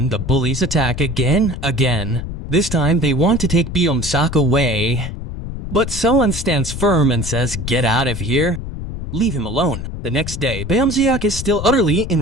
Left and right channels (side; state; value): left; noise; rumble, 7 dB below the sound